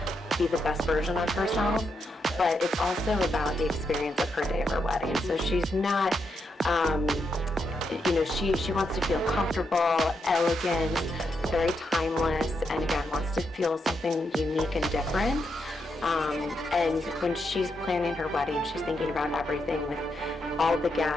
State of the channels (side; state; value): both; normal; correlation 0.82